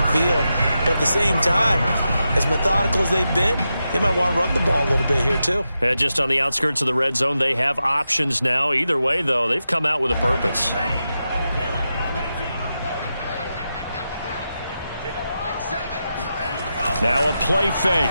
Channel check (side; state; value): both; inverted; correlation -0.89